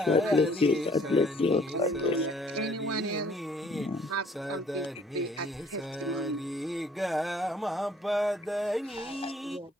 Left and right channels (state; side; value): normal; both; correlation 0.59